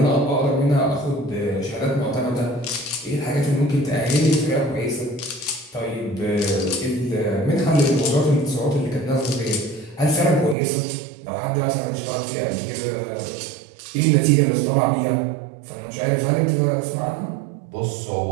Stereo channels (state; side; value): drops out; left; at 10.6 s